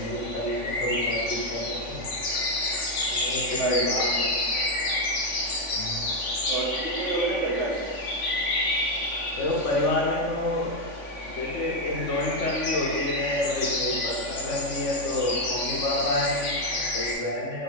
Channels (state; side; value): late; right; 3.5 ms